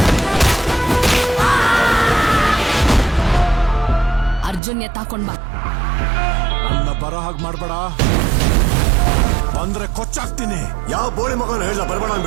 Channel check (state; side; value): drops out; left; at 4.6 s